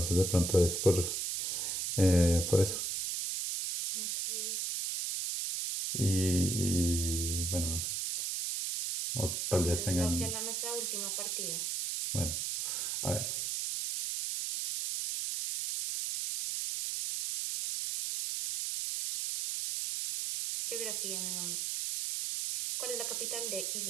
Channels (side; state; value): right; noise; hiss, 1 dB below the sound